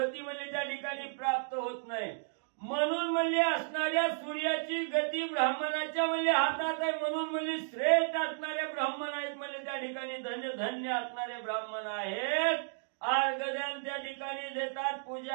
म्हणजे त्या ठिकाणी प्राप्त होत नाही. म्हणून म्हणजे असणाऱ्या सूर्याची गती ब्राह्मणाच्या म्हणजे हातात आहे. म्हणून म्हणजे श्रेष्ठ असणारे ब्राह्मण आहेत म्हणजे त्या ठिकाणी धन्य धन्य असणारे ब्राह्मण आहेत. अर्घदान त्या ठिकाणी देतात.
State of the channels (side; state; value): left; silent; digital silence